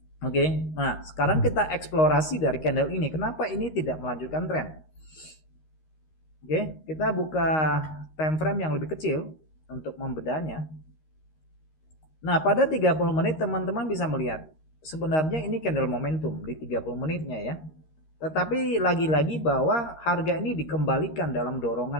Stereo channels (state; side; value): late; right; 13 ms